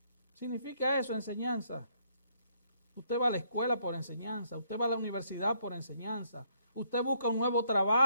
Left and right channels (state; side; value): inverted; both; correlation -0.70